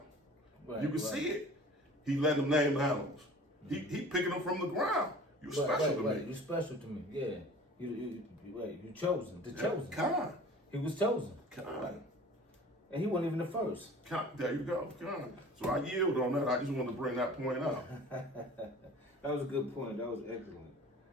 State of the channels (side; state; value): both; normal; correlation 0.44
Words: Right, You can see it. He let him name the animals. He picking them from the ground. You special to me. You special to me. Yeah. You chosen. The chosen. Kind. He was chosen. Kind. And he wasn't even the first. There you go. Kind. So I yield on that. I just wanted to bring that point out. That was a good point. That was excellent.